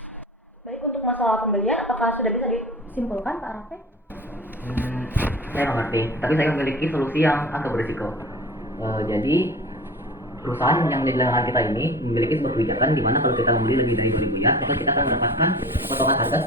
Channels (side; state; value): both; normal; correlation 0.38